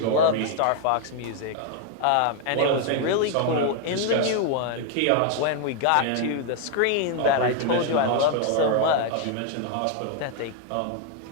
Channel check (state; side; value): different; both; correlation 0.00